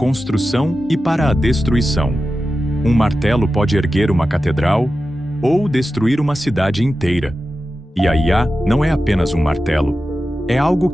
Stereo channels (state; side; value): normal; both; correlation 0.93